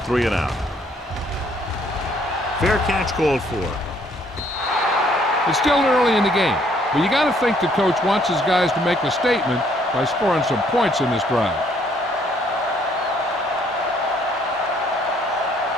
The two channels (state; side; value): normal; both; correlation 0.65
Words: Fair catch called for. It's still early in the game, but you got to think the coach wants his guys to make a statement by scoring some points in this drive.